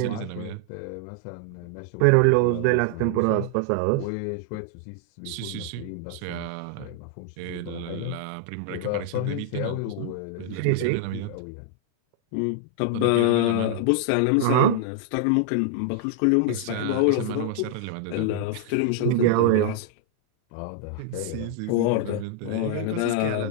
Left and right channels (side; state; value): both; different; correlation -0.01